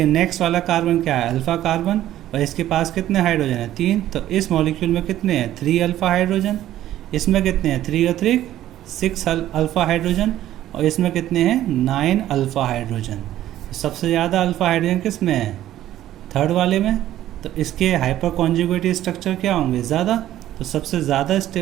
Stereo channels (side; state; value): left; quieter; 13.1 dB